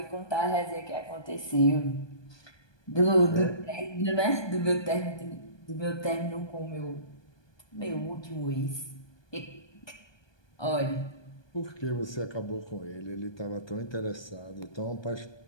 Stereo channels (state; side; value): late; right; 1.2 ms